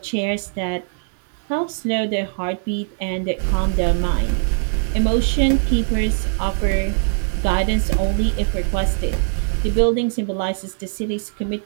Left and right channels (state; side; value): silent; left; digital silence